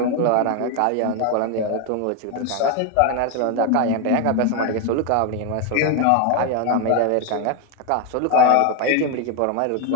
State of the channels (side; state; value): both; different; correlation 0.01